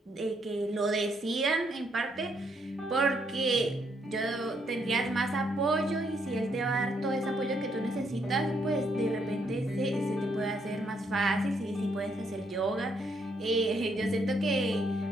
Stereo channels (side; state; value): both; normal; correlation 0.73